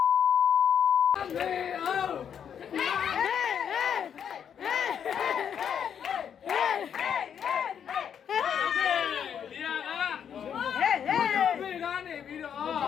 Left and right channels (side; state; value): right; quieter; 8.2 dB